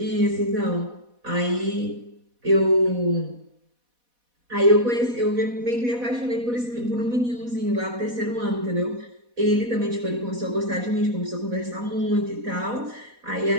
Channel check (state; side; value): late; left; 4.1 ms